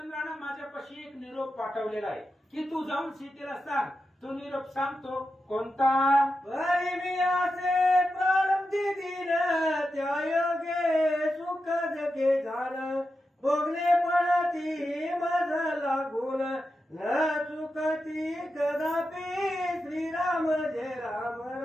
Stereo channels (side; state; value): both; normal; correlation 0.89